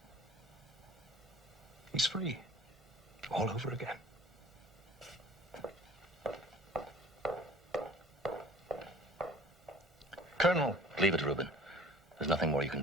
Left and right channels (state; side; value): normal; both; correlation 0.48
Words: He's free. All over again. Colonel. Leave it, Rubin. There's nothing more you can